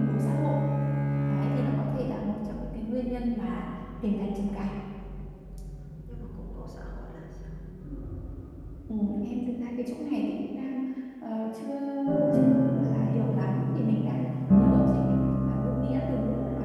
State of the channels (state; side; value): identical; both; correlation 1.00